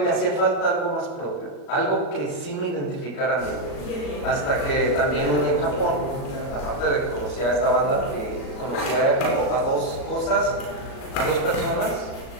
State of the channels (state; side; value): late; right; 37 ms